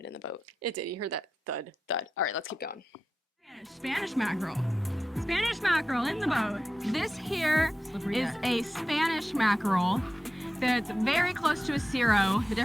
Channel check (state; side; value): normal; both; correlation 0.92